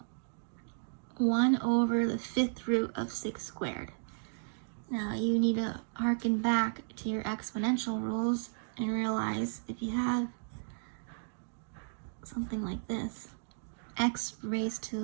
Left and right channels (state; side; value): silent; left; digital silence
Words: 1 over the 5th root of 6 squared. Now you need to harken back to your exponential rules and realize if you have something like this, x raised